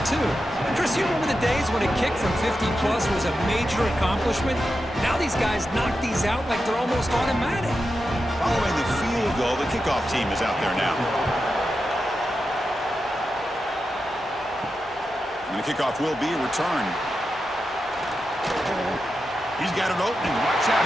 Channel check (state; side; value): normal; both; correlation 0.89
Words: too. Chris, you remember the days when a kick from 50-plus was a major accomplishment? Now these guys knock these out like they're almost automatic. Following the field goal, the kickoff team is out there now. And the kickoff will be returned. He's got an opening. Watch out.